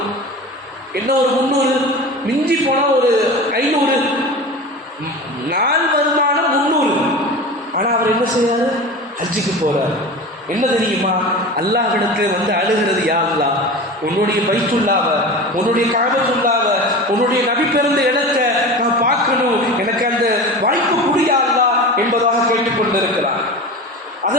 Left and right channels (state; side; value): normal; both; correlation 0.31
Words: என்ன, ஒரு 300, மிஞ்சி போனால் ஒரு 500 நாள் வருமானம் 300. ஆனால் அவர் என்ன செய்யறாரு? ஹஜ்ஜுக்கு போறார். என்ன தெரியுமா? அல்லாஹ்விடத்தில் வந்து அழுகிறது, யா அல்லாஹ், உன்னுடைய பைத்துல்லாவ, உன்னுடைய காபத்துல்லாவ, உன்னுடைய நபி பிறந்த இடத்தை நான் பார்க்கணும், எனக்கு அந்த வாய்ப்பு புரியா அல்லாஹ் என்பதாக கேட்டுக்கொண்டிருக்கிறார்.